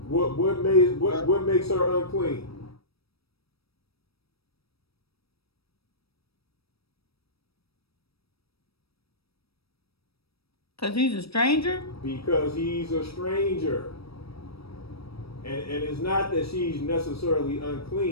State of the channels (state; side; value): late; right; 0.77 ms